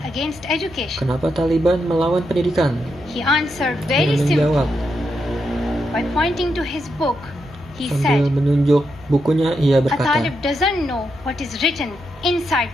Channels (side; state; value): both; normal; correlation 0.83